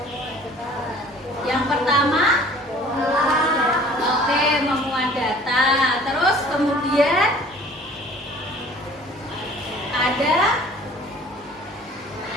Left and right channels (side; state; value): both; normal; correlation 0.50